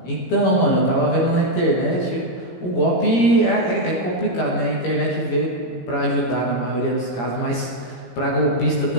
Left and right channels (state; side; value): late; right; 17 ms